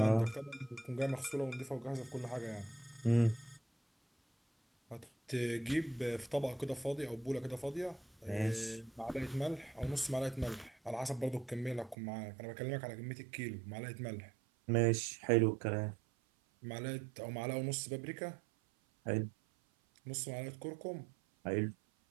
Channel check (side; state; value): left; drops out; at 12.0 s